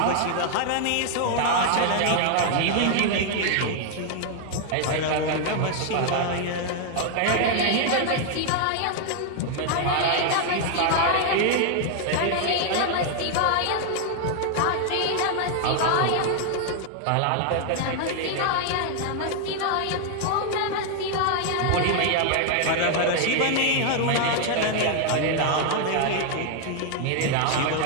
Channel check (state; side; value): different; both; correlation 0.00